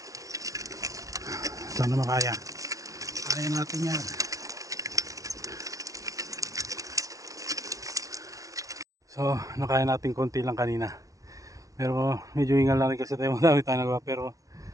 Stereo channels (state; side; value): late; left; 0.17 ms